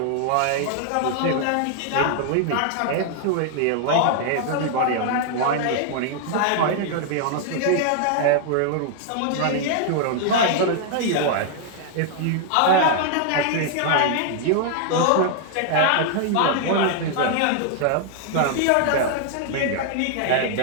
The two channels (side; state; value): both; different; correlation 0.00